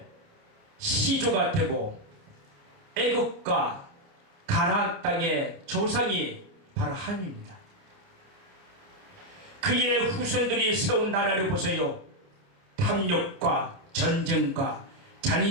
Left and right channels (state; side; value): late; left; 29 ms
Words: 시조가 되고 애국과 가나안 땅의 조상이 바로 함입니다. 그의 후손들이 세운 나라를 보세요. 탐욕과 전쟁과